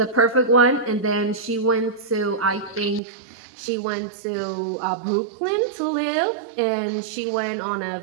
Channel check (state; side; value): drops out; left; at 3.0 s